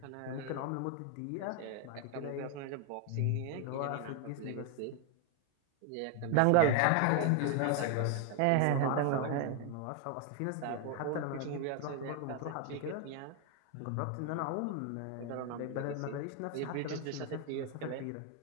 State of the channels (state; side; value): different; both; correlation 0.00